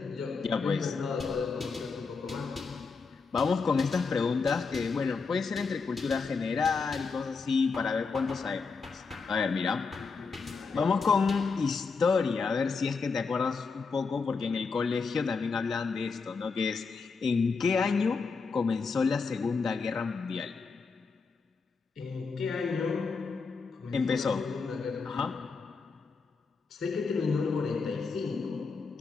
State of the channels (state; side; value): quieter; right; 4.8 dB